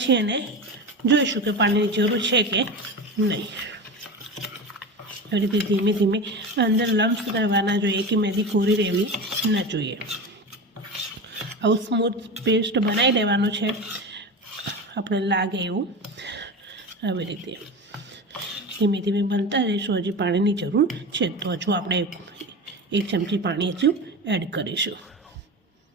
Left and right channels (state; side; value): normal; both; correlation 0.26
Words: એને જોઈશું કે પાણીની જરૂર છે કે નહીં. એ રીતે ધીમે ધીમે અંદર લમ્સ રહેવાના જોઈએ, કે મહેંદી કોરી રહેવી ન જોઈએ. આવું સ્મૂથ પેસ્ટ બનાવી લેવાનું છે આપણે લાગે એવું. આવી રીતે ધીમે ધીમે બનતા રહીશું. હજી પાણીની જરૂર છે તો હજુ આપણે 1 ચમચી પાણી હજુ એડ કરીશું.